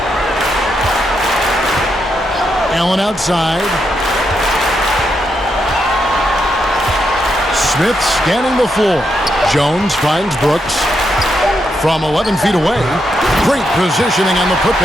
Allen outside. Smith scanning the floor. Jones finds Brooks. From 11 feet away, great positioning on the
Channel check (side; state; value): both; normal; correlation 0.81